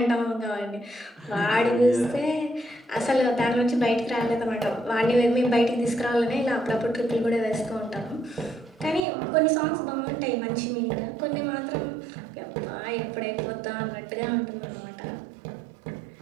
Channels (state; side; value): drops out; left; at 9.1 s